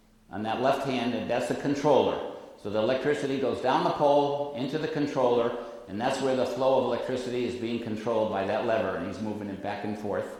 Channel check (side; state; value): both; identical; correlation 1.00